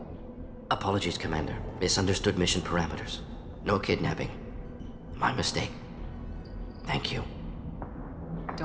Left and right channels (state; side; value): identical; both; correlation 1.00